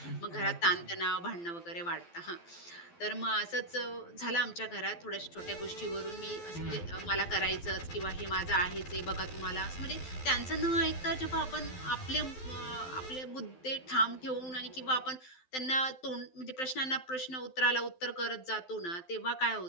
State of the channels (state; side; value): late; right; 12 ms